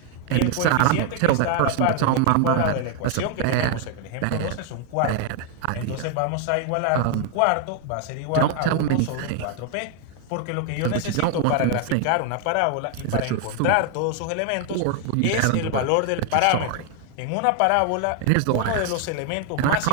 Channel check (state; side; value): different; both; correlation 0.01